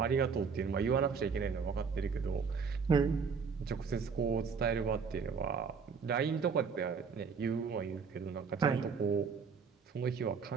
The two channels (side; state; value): left; quieter; 5.7 dB